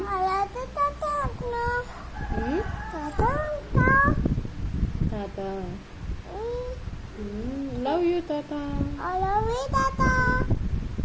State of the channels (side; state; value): both; identical; correlation 1.00